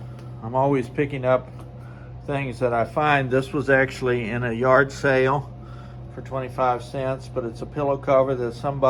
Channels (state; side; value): identical; both; correlation 1.00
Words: I'm always picking up things that I find. This was actually in a yard sale for 25 cents, but it's a pillow cover that